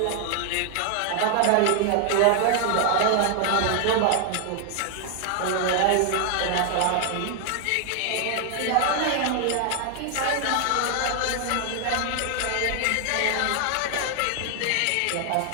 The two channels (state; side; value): different; both; correlation 0.00